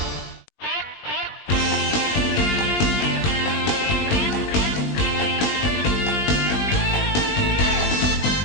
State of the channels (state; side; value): late; right; 20 ms